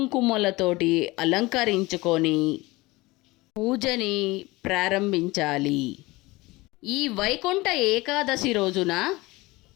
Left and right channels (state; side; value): quieter; right; 21.6 dB